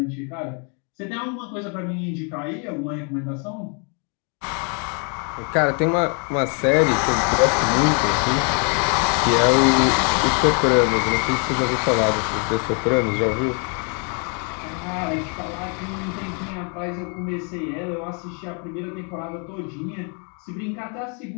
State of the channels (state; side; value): quieter; right; 38.3 dB